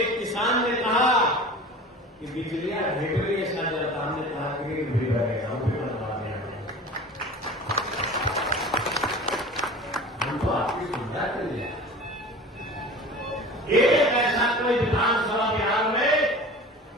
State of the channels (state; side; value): normal; both; correlation 0.38